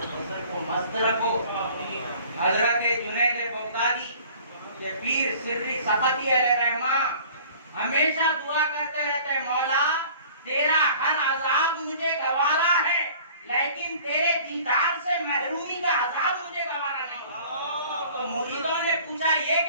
बसर को मस्त रखो। हजरत जुनैद बगदादी के पीर सिर्री सफती अलैहिर्रहमा हमेशा दुआ करते रहते हैं, मौला तेरा हर अजाब मुझे गवारा है, लेकिन तेरे दीदार से महरूमी का अजाब मुझे गवारा नहीं। तो मुरीदों ने पूछा ये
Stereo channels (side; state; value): both; inverted; correlation -0.49